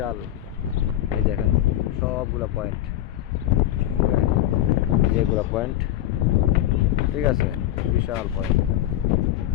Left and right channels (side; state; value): right; quieter; 13.1 dB